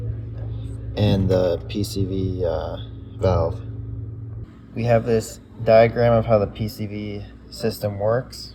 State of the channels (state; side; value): identical; both; correlation 1.00